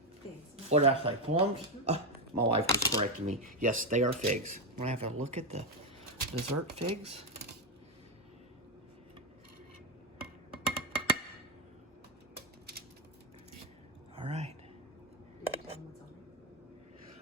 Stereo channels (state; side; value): normal; both; correlation 0.07